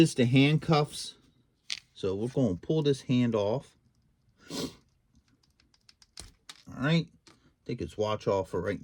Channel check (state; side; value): identical; both; correlation 1.00